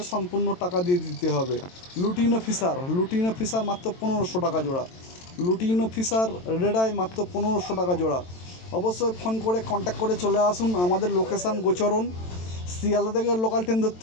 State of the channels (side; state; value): right; late; 22 ms